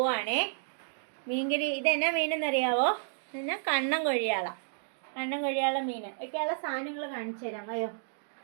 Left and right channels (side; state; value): left; silent; digital silence